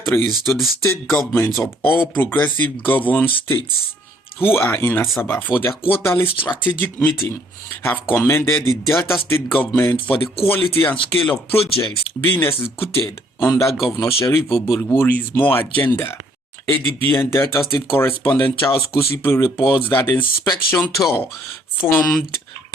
to the state governments of all progressive governed states who are in Asaba for their quarterly strategic meeting have commended the Delta State government for the quality and scale of projects being executed under Governor Sheriff Oborevwori's more agenda. ADB and Delta State correspondent Charles Kusipe reports that the inspection tour formed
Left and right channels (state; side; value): normal; both; correlation 0.64